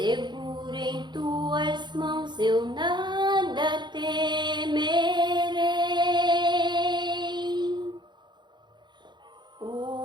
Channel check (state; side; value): late; left; 0.22 ms